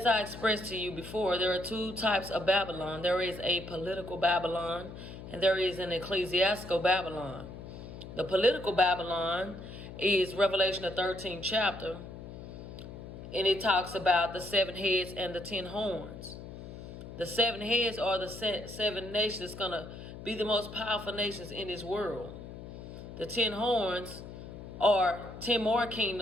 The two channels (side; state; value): left; noise; hum, 12 dB below the sound